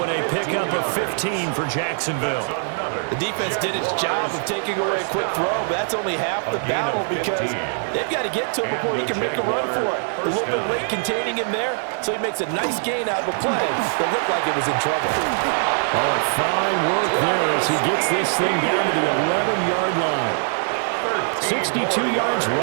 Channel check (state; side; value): silent; left; 64 dB below the other